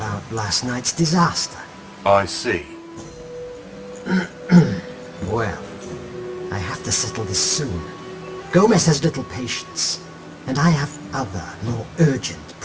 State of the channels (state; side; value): identical; both; correlation 1.00